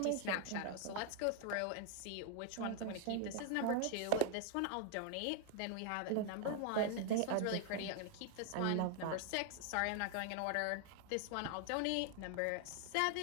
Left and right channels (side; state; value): both; different; correlation 0.00